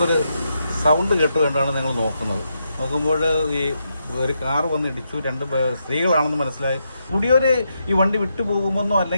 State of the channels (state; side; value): inverted; both; correlation -0.82